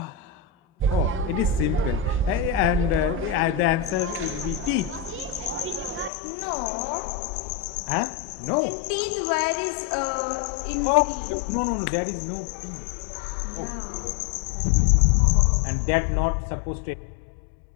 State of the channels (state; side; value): drops out; right; at 6.1 s